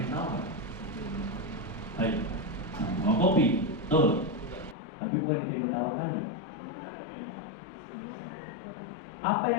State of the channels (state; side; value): drops out; right; at 4.8 s